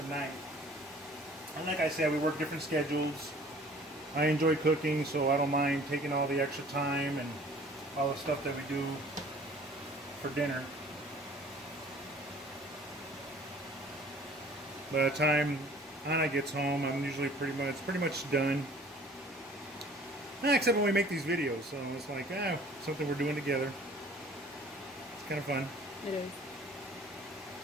night. And like I said, we work different schedules. I enjoy cooking, so I don't mind taking all the extra time and all the stuff that we do for dinner. By the time Anna gets home, I'm usually pretty much done. Except when we make these videos, so it's like something we're doing together. It's kind of fun. It is.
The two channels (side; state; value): both; normal; correlation 0.51